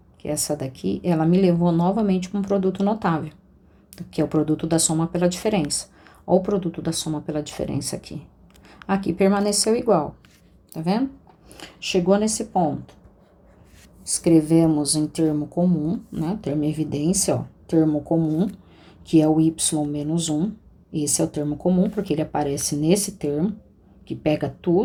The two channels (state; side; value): identical; both; correlation 1.00